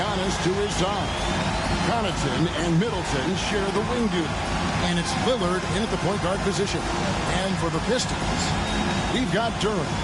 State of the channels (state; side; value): identical; both; correlation 1.00